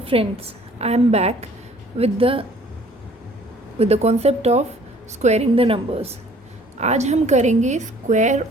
friends, I am back with the concept of squaring the numbers. आज हम करेंगे square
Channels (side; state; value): both; normal; correlation 0.55